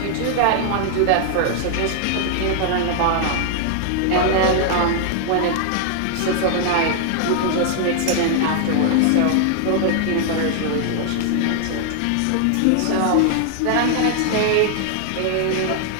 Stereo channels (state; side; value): different; both; correlation 0.00